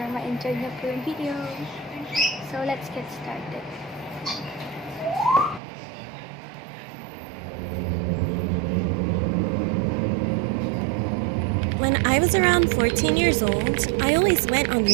ma-enjoy nyo po yung video. So let's get started. When I was around 14 years old, I always went on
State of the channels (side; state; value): left; drops out; at 5.6 s